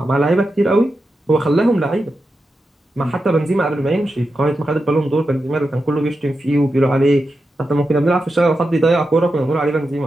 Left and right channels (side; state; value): both; normal; correlation 0.89